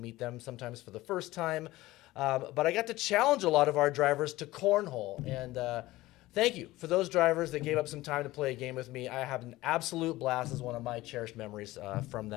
them sometimes for the first time. But I got to challenge a lot of our drivers to cornhole. And thank you for those drivers that gave up some time to play a game with me. I have an absolute blast as one of my cherished memories from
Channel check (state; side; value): quieter; right; 17.9 dB